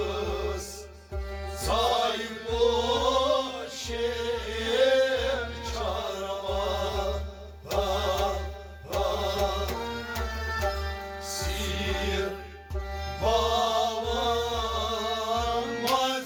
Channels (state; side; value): identical; both; correlation 1.00